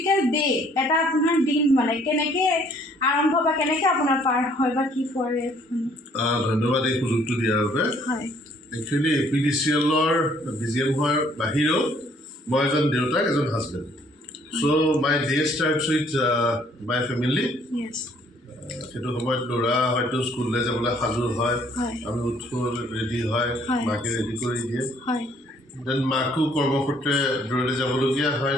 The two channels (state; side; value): normal; both; correlation 0.62